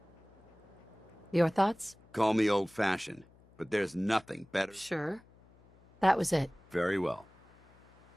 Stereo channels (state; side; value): noise; left; hum, 28 dB below the sound